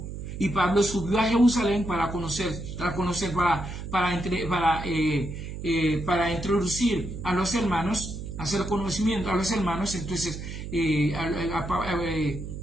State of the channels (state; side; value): noise; right; hum, 8 dB below the sound